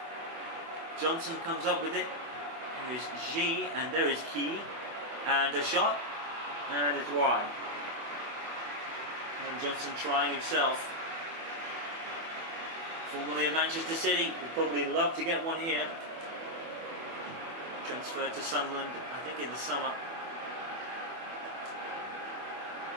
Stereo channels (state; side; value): late; left; 24 ms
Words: Johnson comes up with it. There is G, and there is Key. And a shot, and it's wide. And Johnson trying himself. Formerly of Manchester City, would probably love to get one here. Transferred to Sunderland, I think in the summer.